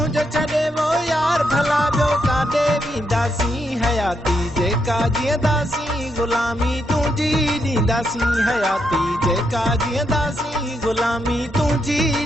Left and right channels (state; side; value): normal; both; correlation 0.79